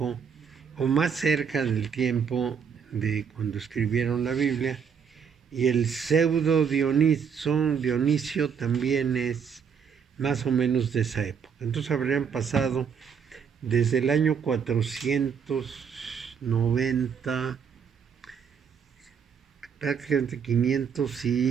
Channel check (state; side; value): quieter; left; 6.9 dB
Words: o más cerca del tiempo de cuando escribieron la Biblia. Y el pseudo Dionisio también es más o menos de esa época. Entonces habrían pasado desde el año 490, prácticamente 500